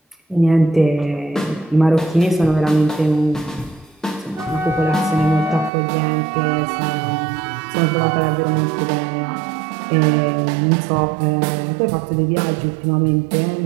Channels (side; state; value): left; drops out; at 5.7 s